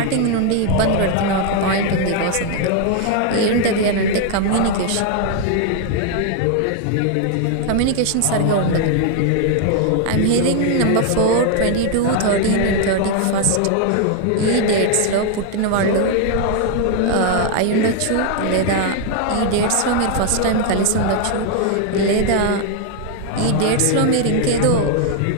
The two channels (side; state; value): both; different; correlation 0.00